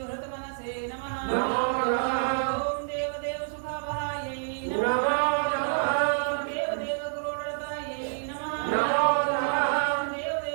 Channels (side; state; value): left; silent; digital silence